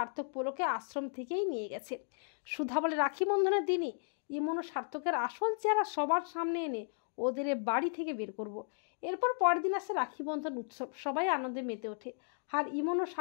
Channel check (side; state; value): right; silent; digital silence